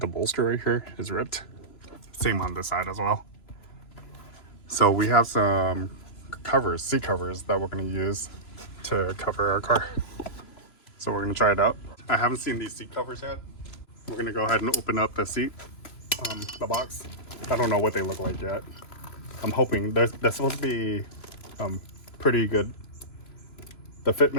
bolster right here, is ripped? Same on this side as well. So we have some covers, seat covers, that we're going to use to cover our car. So we're going to try it out. I haven't seen these seat covers yet. We're going to go ahead and open up the seat, the box. I don't know what they look like yet. I'm hoping they're supposed to be pretty good. The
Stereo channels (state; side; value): late; right; 3.0 ms